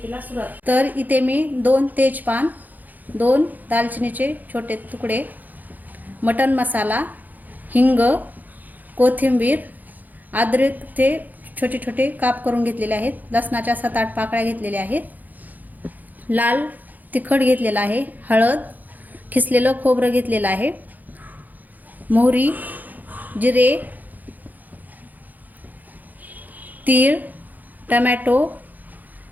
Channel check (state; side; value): late; left; 0.083 ms